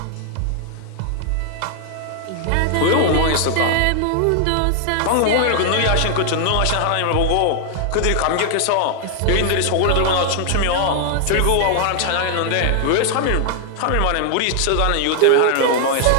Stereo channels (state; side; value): different; both; correlation 0.00